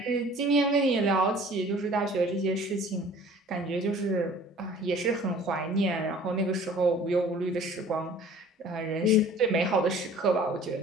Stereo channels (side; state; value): both; normal; correlation 0.49